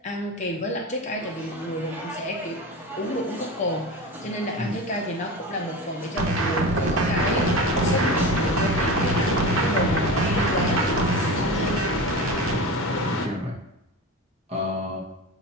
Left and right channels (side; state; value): both; normal; correlation 0.28